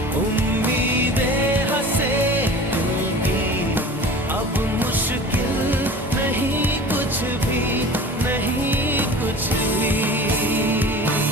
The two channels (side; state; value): both; normal; correlation 0.39